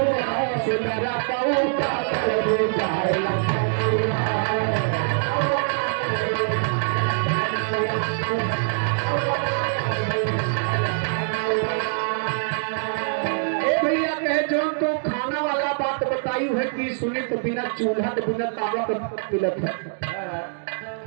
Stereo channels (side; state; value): left; silent; digital silence